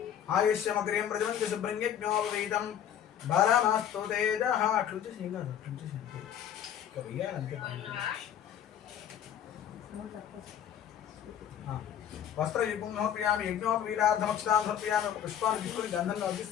ఆయుష్యమగ్రియం ప్రజవంతి శుభ్రం యజ్ఞోపవీదం బలమస్తు తేజః అట్లుంచి సింగారు అట్లుంచి వస్త్రయుగ్మం సమర్పయామి యజ్ఞోపవీదార్థమక్షతాం సమర్పయామి పుష్పాన్ని తీసుకుని గంధంలో వచ్చి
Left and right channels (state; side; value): quieter; right; 9.6 dB